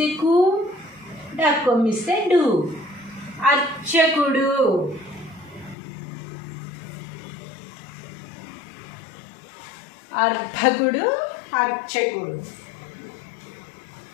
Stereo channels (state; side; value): drops out; right; at 5.8 s